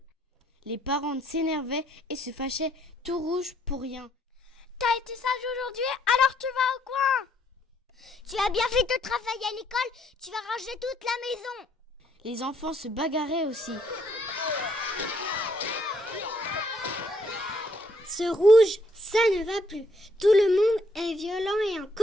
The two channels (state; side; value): normal; both; correlation 0.69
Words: Les parents s'énervaient et se fâchaient, tout rouge pour rien. T'as été sage aujourd'hui, alors tu vas au coin. Tu as bien fait ton travail à l'école, tu vas ranger toute la maison. Les enfants se bagarraient aussi. Ce rouge, ça ne va plus. Tout le monde est violent et en